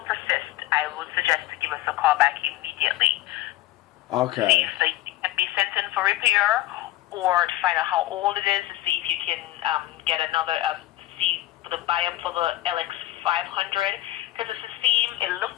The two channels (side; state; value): right; quieter; 15.9 dB